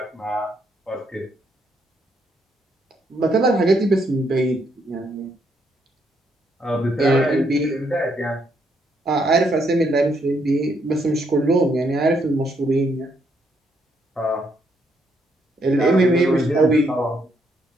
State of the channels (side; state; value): both; normal; correlation 0.74